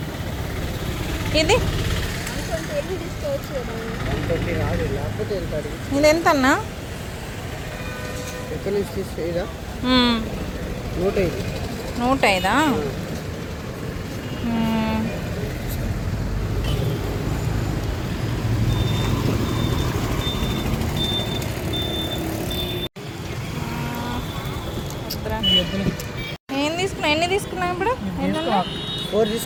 ఇది ఎంత అన్నా? 105. ఎన్ని తీసుకున్నాం ఇప్పుడు? 4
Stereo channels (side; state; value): both; identical; correlation 1.00